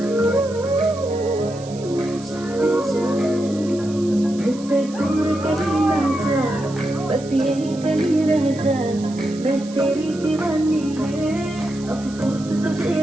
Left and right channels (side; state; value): right; noise; hiss, 19 dB below the sound